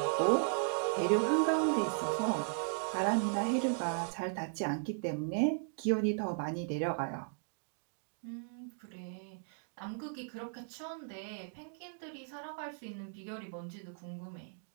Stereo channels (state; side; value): silent; left; digital silence